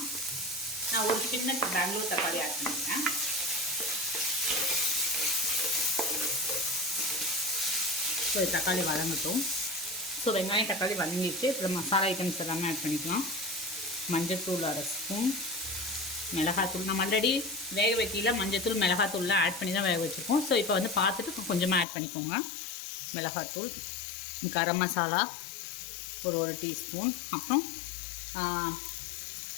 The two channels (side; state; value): right; drops out; at 21.9 s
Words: நான் ஒரு சின்ன பெங்களூர் தக்காளி ஆட் பண்ணிக்கிறேன். ஸோ தக்காளி வதங்கட்டும். ஸோ வெங்காயம் தக்காளி வதங்கிடுச்சு. அப்புறம் மசாலா ஐட்டம்ஸ் எல்லாமே ஆட் பண்ணிக்கலாம். மஞ்சத்தூள் 1/2 ஸ்பூன், மிளகாத்தூள் நம்ம ஆல்ரெடி வேக வைக்கல மஞ்சத்தூள் மிளகாத்தூள்லாம் ஆட் பண்ணி தான் வேக வச்சுருக்கோம். ஸோ இப்போ வந்து பார்த்துட்டு கொஞ்சமாக ஆட் பண்ணிக்கோங்க. மிளகாத்தூள், கரம் மசாலா ஒரு 1 டீஸ்பூன், அப்புறம்